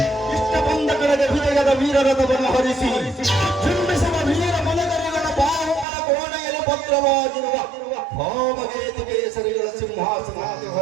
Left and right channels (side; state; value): left; drops out; at 5.9 s